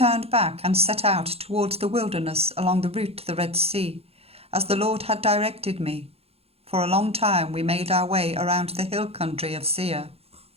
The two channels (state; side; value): late; left; 0.29 ms